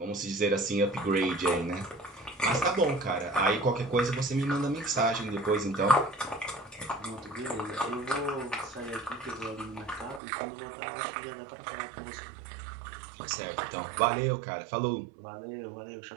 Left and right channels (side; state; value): left; drops out; at 10.2 s